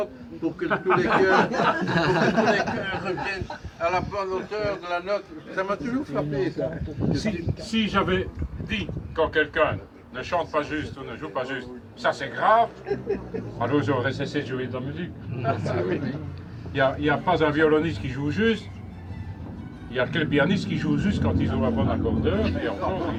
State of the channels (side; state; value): both; identical; correlation 1.00